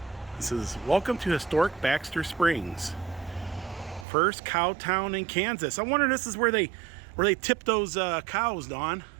This is welcome to historic Baxter Springs. First cow town in Kansas. I wonder if this is where they tip those cows, Dawn.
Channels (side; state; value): left; drops out; at 4.0 s